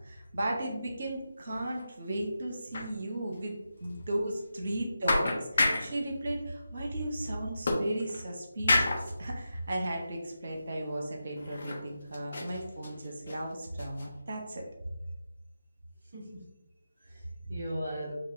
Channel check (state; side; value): inverted; both; correlation -0.89